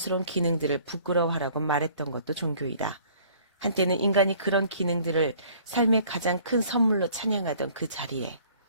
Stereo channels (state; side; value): inverted; both; correlation -0.55